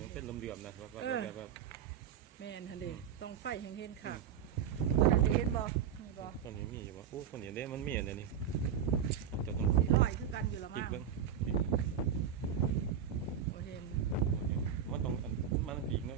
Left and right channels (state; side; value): quieter; left; 8.4 dB